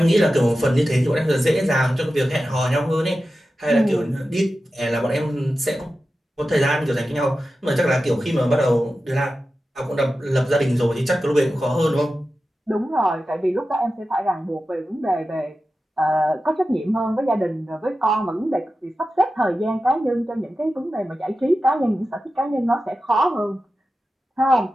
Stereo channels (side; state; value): both; normal; correlation 0.93